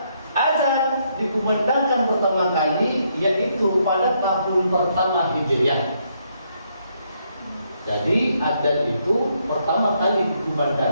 azan dikumandangkan pertama kali yaitu pada tahun pertama Hijriah. Jadi adzan itu pertama kali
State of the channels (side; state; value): both; inverted; correlation -0.74